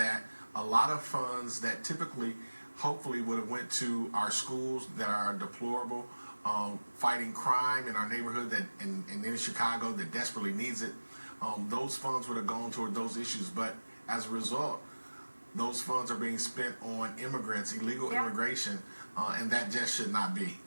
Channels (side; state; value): both; inverted; correlation -1.00